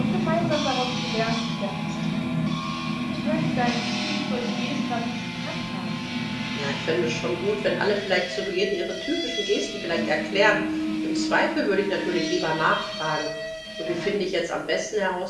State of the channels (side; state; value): both; identical; correlation 1.00